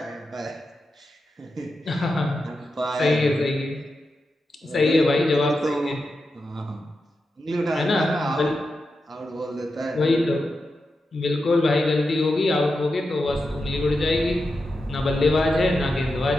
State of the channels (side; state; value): both; normal; correlation 0.89